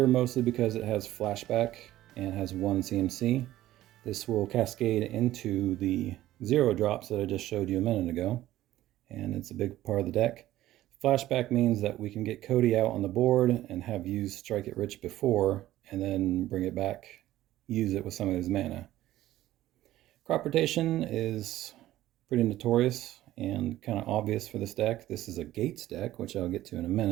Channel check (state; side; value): quieter; left; 14.6 dB